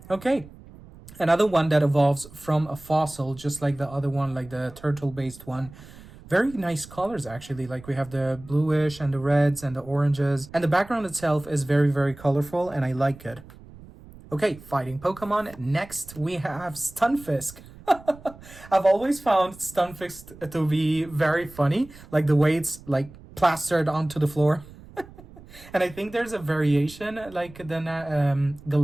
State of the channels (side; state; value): right; noise; rumble, 20 dB below the sound